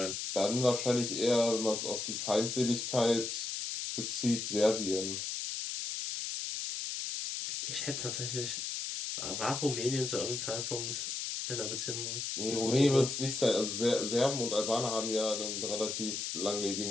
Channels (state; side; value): noise; left; hiss, 3 dB below the sound